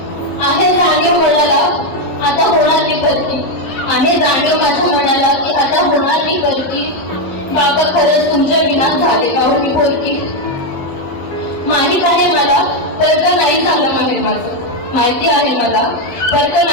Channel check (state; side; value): late; right; 12 ms